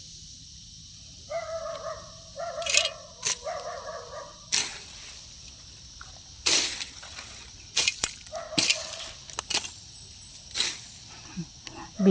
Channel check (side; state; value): both; identical; correlation 1.00